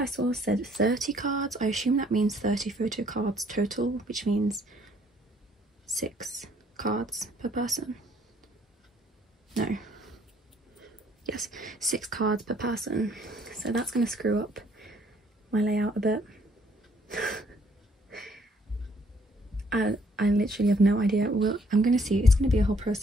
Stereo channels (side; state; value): both; normal; correlation 0.64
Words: saw said 30 cards. I assume that means 30 photo cards total, which means 6 cards per person. No. Yes, 6 cards per person. So that's going to screw up my layout a bit. I literally have no idea. Well, I'm going to see. It's going to be a whole